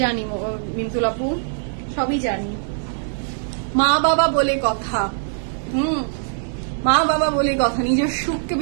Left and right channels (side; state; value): left; silent; 64 dB below the other